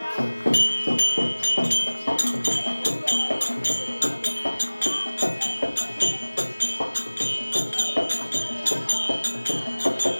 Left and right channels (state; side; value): inverted; both; correlation -1.00